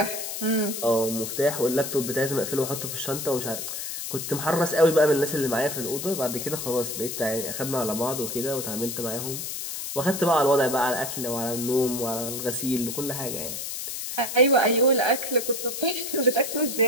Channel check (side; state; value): left; noise; hiss, 5 dB below the sound